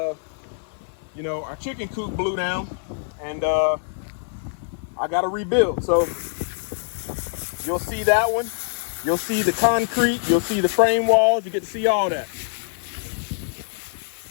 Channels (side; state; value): right; silent; 62 dB below the other